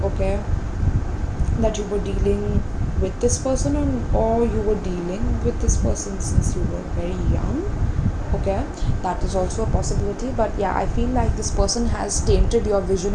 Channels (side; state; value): both; identical; correlation 1.00